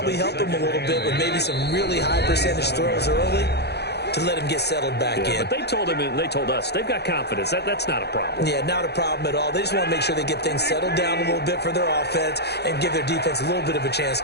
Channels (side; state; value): right; late; 0.48 ms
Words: help him a little bit with maybe some really high percentage throws early to let him get settled back in. But they told him, and they told us, they've got confidence. That's not a problem. Yeah, not a problem at all. They just want to make sure they get things settled down a little bit for their offense and give their defense a little bit of a chance